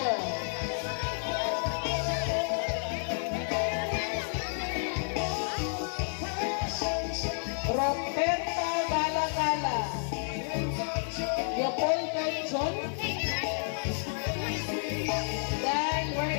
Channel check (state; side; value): silent; right; 57 dB below the other